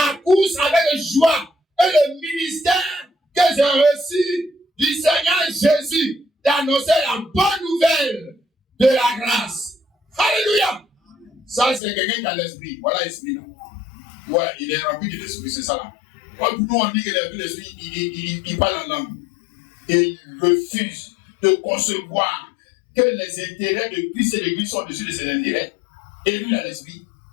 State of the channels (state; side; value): drops out; right; at 11.8 s